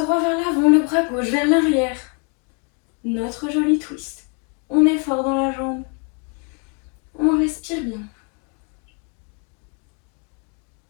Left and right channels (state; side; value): quieter; right; 37.8 dB